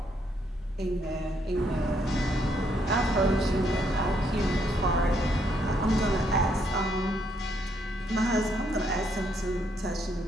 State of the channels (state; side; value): normal; both; correlation 0.73